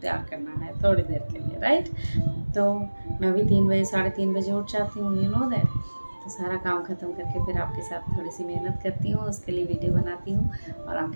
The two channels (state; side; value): inverted; both; correlation -1.00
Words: करना है थोड़ी देर के लिए, राइट। तो मैं भी 3 बजे 3:30 बजे उठ जाती हूँ, यू नो दैट। तो सारा काम ख़त्म करके फिर आपके साथ थोड़ी सी मेहनत करती हूँ, उसके लिए वीडियो बनाती हूँ और